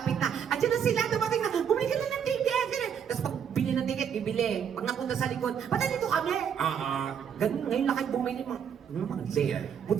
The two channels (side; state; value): left; quieter; 8.0 dB